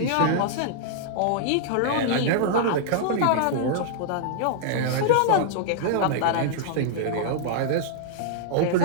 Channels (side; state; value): both; different; correlation -0.02